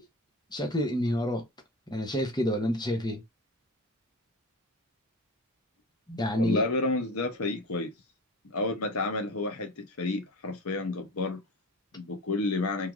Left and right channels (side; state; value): both; normal; correlation 0.32